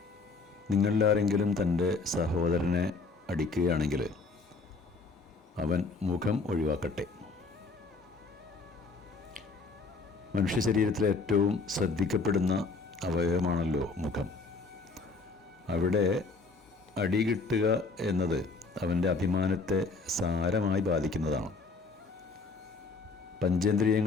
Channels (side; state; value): right; quieter; 4.2 dB